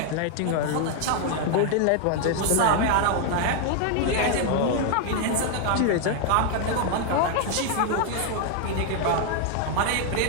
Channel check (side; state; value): both; different; correlation 0.00